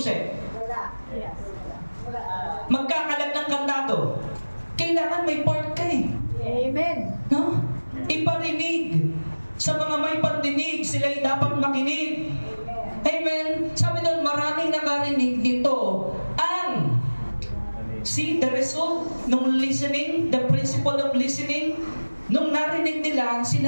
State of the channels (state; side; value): inverted; both; correlation -1.00